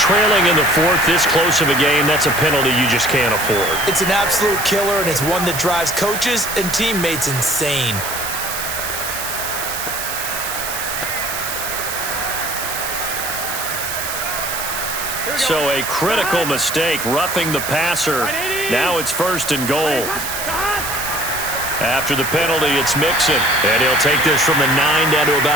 in the 4th, this close of a game, that's a penalty you just can't afford. It's an absolute killer, and it's one that drives coaches and teammates insane. So a critical mistake, roughing the passer. Now it's 1st and goal. After the penalty, it's Mixon. And he'll take this from the 9 down to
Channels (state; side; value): noise; right; hiss, 5 dB below the sound